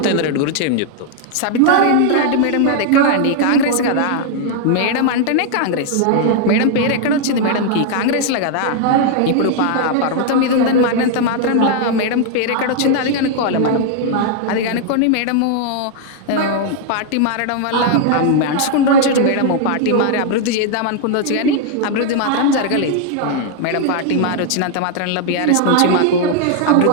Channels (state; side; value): different; both; correlation 0.00